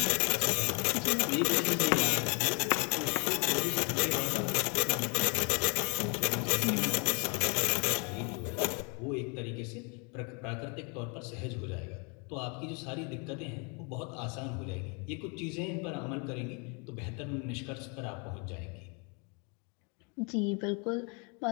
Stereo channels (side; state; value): right; quieter; 34.1 dB